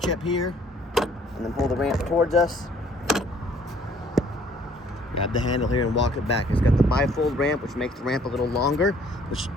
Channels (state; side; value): normal; both; correlation 0.59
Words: up here and then pull the ramp towards us. Grab the handle here and walk it back. It's got the bifold ramp, which makes the ramp a little longer, which